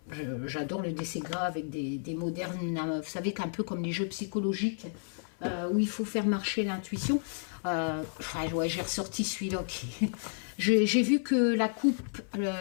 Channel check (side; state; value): right; silent; 57 dB below the other